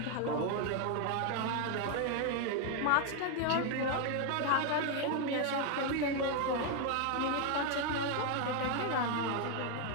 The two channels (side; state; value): both; different; correlation 0.01